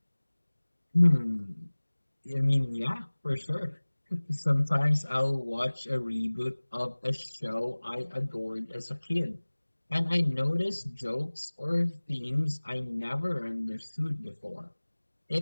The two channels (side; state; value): both; inverted; correlation -1.00